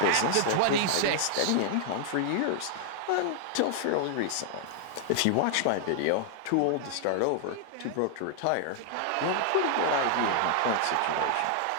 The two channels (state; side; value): different; both; correlation 0.00